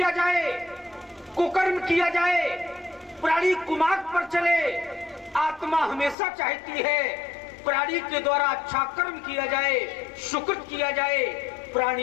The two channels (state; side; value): drops out; right; at 6.2 s